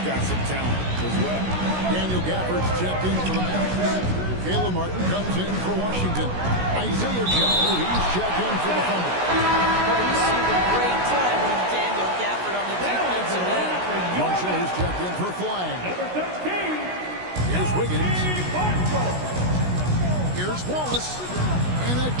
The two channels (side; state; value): left; late; 16 ms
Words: got some talent as well. Daniel Gafford's checked in for the Mavericks. Caleb Martin comes in for Washington. Isaiah Joe, he's checked in for the Thunder. Well, you see the great time with Daniel Gafford on the defensive end. Marshall is checked in for Flagg. Here's Wiggins. Here's Wallace. And